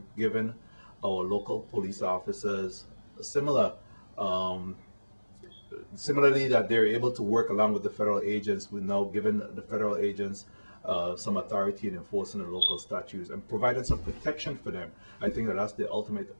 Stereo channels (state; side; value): inverted; both; correlation -1.00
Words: given our local police officers similarly that they're able to work along with the federal agents. We're now giving the federal agents some authority in enforcing the local statutes and providing some protection for them. I think that that's the ultimate